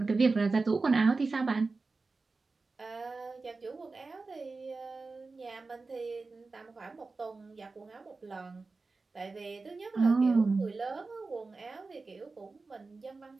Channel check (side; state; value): left; quieter; 3.9 dB